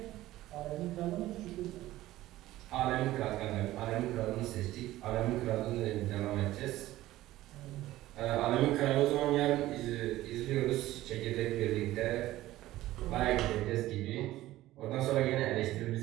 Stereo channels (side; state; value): left; quieter; 15.9 dB